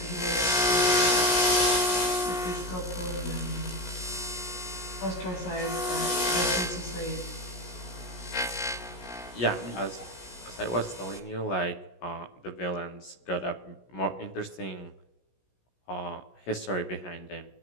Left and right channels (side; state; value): right; late; 17 ms